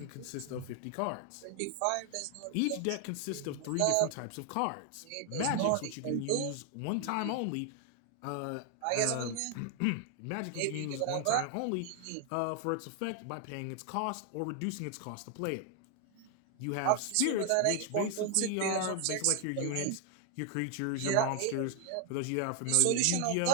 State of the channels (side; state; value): both; different; correlation 0.00